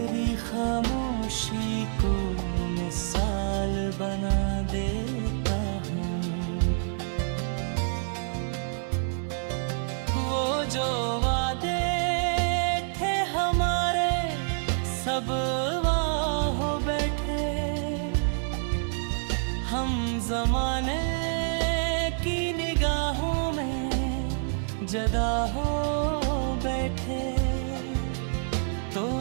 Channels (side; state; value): left; silent; 60 dB below the other